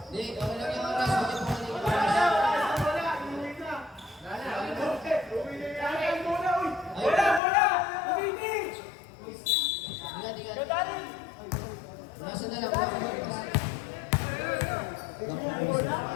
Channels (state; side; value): drops out; right; at 7.4 s